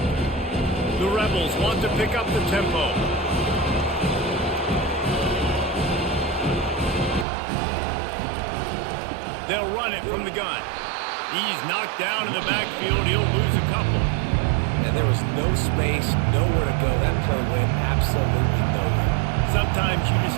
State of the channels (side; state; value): left; drops out; at 7.2 s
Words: The Rebels want to pick up the tempo. They'll run it from the gun. He's knocked down in the backfield. He'll lose a couple. And there was no space, nowhere to go. That play went absolutely nowhere. Sometimes you just